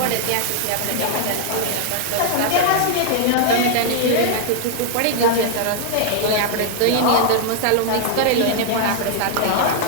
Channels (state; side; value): different; both; correlation -0.01